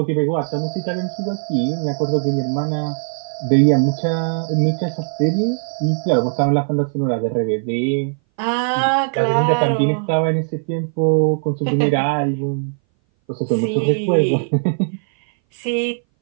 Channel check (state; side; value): silent; left; 60 dB below the other